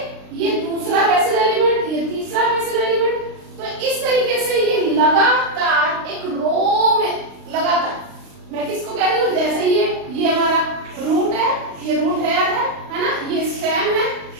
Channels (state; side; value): late; left; 36 ms